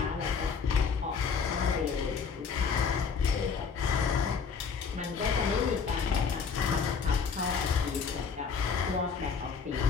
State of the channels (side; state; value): right; quieter; 5.8 dB